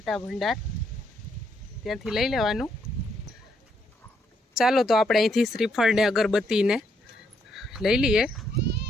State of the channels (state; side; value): normal; both; correlation 0.74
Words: ભંડાર, ત્યાંથી લઈ લેવાનું. ચાલો તો આપણે અહીંથી શ્રીફળ ને અગરબત્તીને લઈ લઈએ.